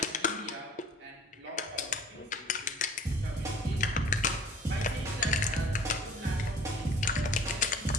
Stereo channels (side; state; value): both; normal; correlation 0.49